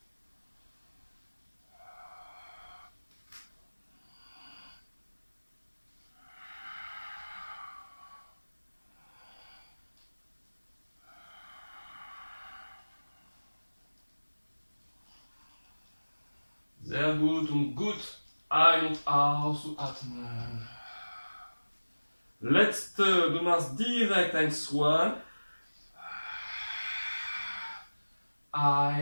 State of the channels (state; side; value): inverted; both; correlation -1.00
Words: Sehr gut und gut ein- und aus zu atmen. Letzte, du machst direkt ein Swan.